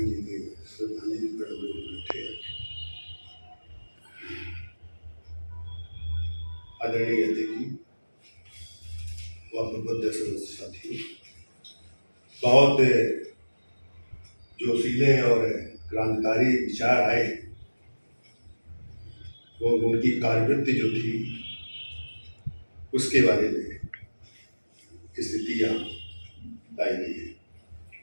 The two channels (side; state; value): both; inverted; correlation -1.00